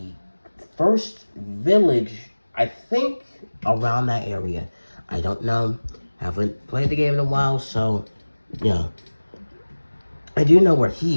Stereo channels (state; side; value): inverted; both; correlation -1.00